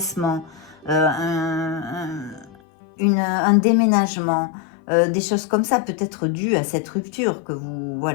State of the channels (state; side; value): drops out; right; at 2.6 s